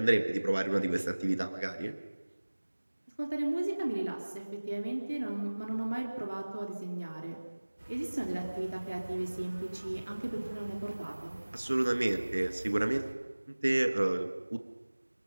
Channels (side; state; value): both; inverted; correlation -1.00